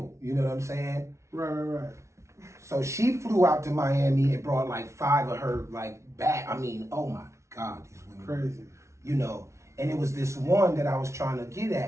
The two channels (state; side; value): late; left; 0.14 ms